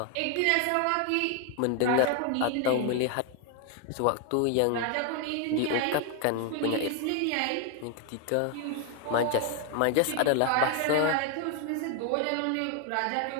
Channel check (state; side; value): different; both; correlation 0.01